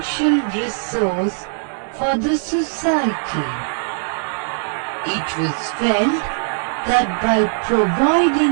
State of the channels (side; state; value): left; silent; digital silence